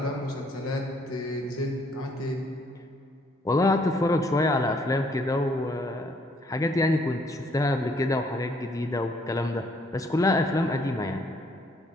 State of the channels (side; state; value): both; normal; correlation 0.66